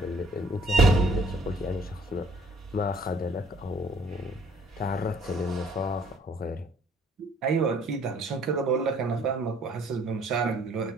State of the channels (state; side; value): normal; both; correlation 0.59